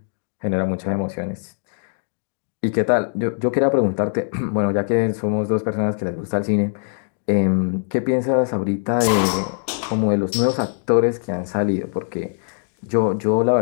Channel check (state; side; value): silent; right; digital silence